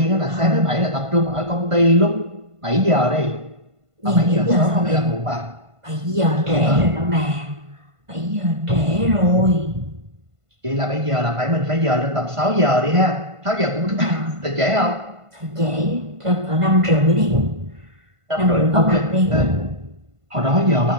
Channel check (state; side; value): late; left; 1.5 ms